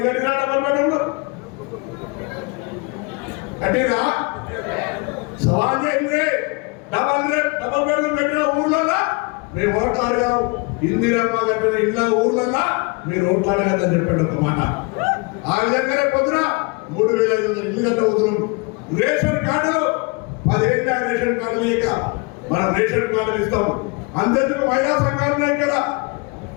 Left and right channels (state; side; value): quieter; right; 29.7 dB